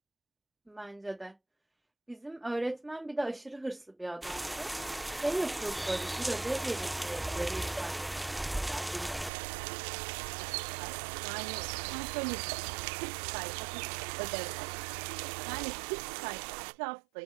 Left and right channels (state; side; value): drops out; left; at 9.3 s